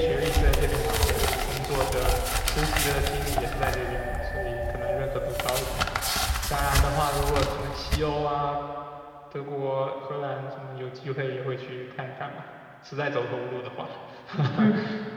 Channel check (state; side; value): identical; both; correlation 1.00